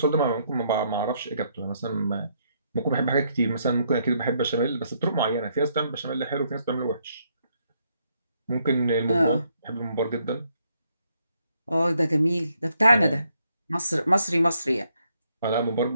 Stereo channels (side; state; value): both; inverted; correlation -0.73